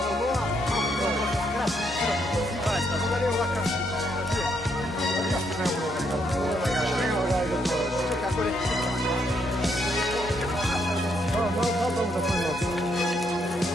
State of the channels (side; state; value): both; normal; correlation 0.75